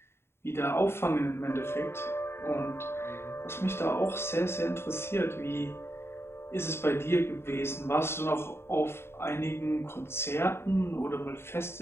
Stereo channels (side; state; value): right; late; 0.12 ms